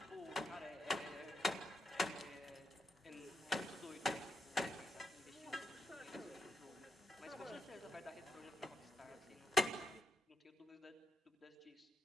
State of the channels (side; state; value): both; normal; correlation 0.83